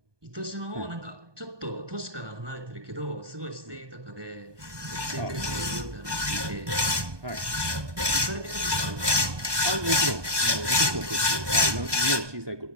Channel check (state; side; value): late; left; 1.2 ms